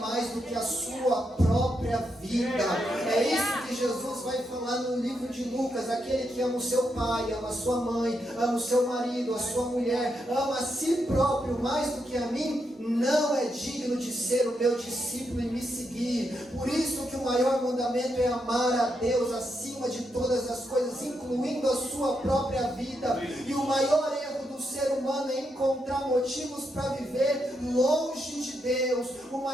do que a sua própria vida. É isso que Jesus vai falar no livro de Lucas: aquele que ama o seu pai, ama a sua mãe, ama o seu marido, a sua mulher, ama a si próprio mais do que a mim, não é digno de ser o meu discípulo e me seguir. Por isso que o maior mandamento é amar a Deus acima de todas as coisas, incluindo a sua própria vida. E o maior erro do ser humano é encontrar motivos para viver longe de Deus. O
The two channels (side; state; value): both; normal; correlation 0.82